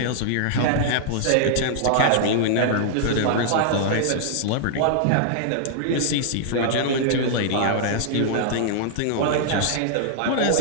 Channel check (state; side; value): different; both; correlation -0.01